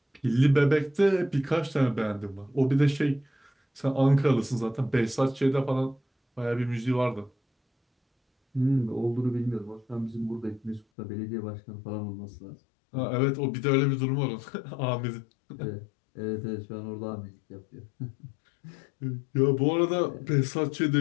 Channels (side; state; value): right; drops out; at 10.9 s